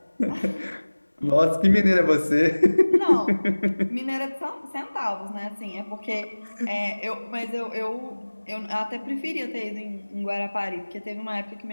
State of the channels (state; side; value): inverted; both; correlation -1.00